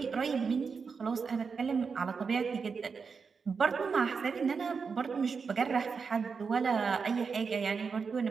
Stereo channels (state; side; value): quieter; left; 5.4 dB